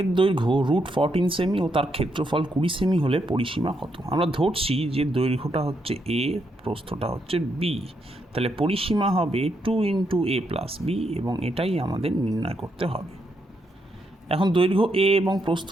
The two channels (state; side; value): normal; both; correlation 0.79